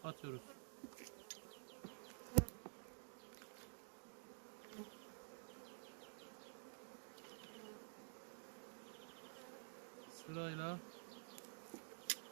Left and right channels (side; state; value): left; silent; digital silence